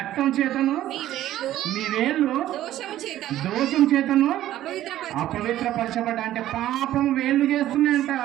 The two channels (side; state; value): left; quieter; 13.3 dB